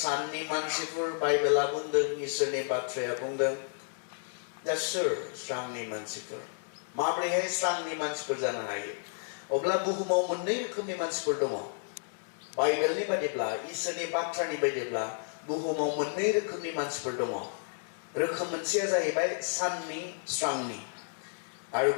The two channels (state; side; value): silent; right; digital silence